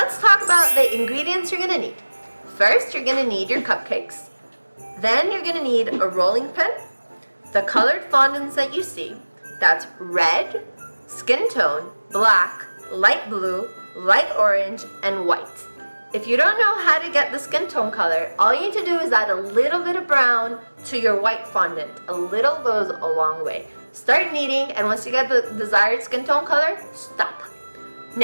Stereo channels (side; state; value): both; inverted; correlation -1.00